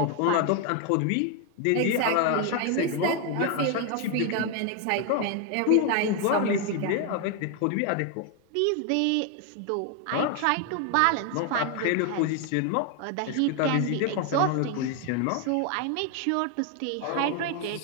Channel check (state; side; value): different; both; correlation 0.01